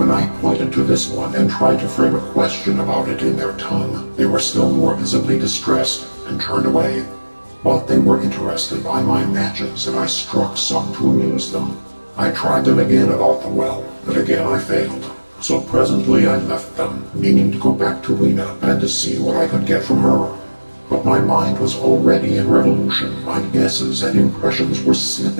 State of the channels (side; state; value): both; inverted; correlation -1.00